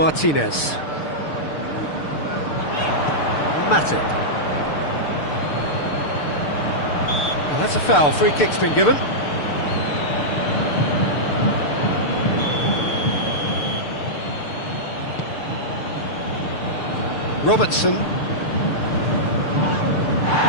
Matip. Well, that's a foul. Free kick's been given. Robertson.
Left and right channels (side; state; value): right; late; 6.7 ms